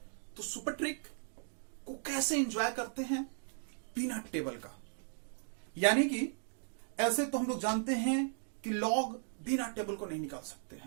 तो सुपर ट्रिक को कैसे एंजॉय करते हैं बिना टेबल का, यानी कि ऐसे तो हम लोग जानते हैं कि लॉग बिना टेबल को नहीं निकाल सकते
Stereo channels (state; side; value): silent; left; digital silence